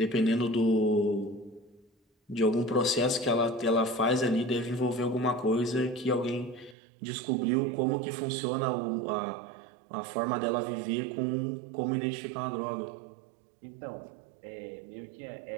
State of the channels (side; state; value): left; drops out; at 6.8 s